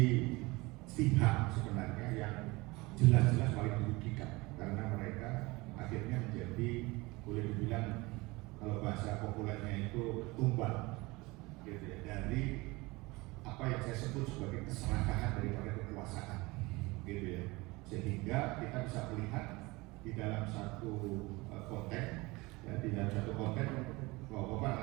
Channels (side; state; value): left; quieter; 23.1 dB